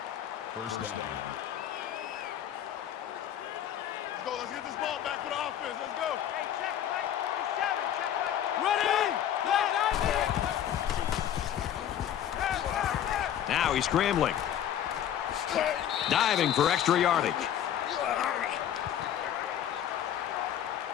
First down. Let's go. Let's get this ball back for the offense. Let's go. Hey, check Mike 47. Check Mike 47. Ready? Now he's scrambling. Diving for extra yardage. Hey,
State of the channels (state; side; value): quieter; right; 10.4 dB